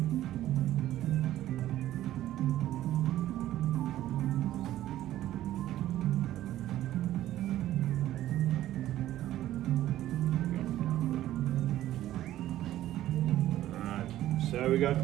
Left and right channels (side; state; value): left; quieter; 13.6 dB